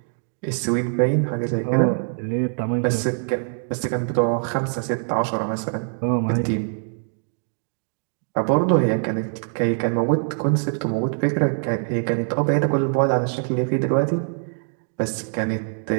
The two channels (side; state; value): left; silent; digital silence